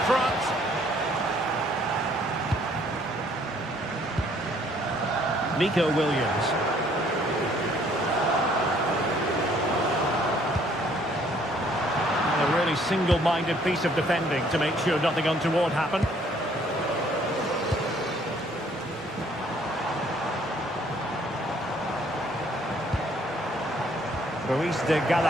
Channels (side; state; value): both; normal; correlation 0.62